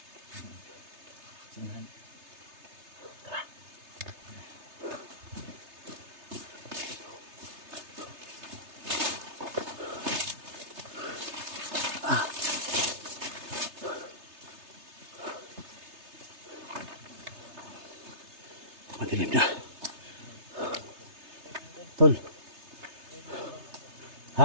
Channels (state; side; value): late; left; 3.3 ms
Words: Sinahan. Madilim na. Tol.